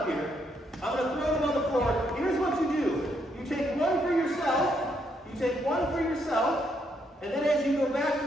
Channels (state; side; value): normal; both; correlation 0.75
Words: here. I'm going to throw them on the floor. Here's what you do. You take one for yourself. You take one for yourself. And then as you go back to